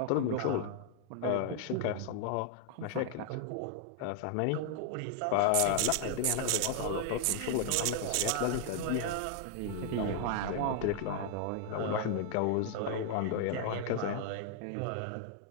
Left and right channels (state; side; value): different; both; correlation 0.00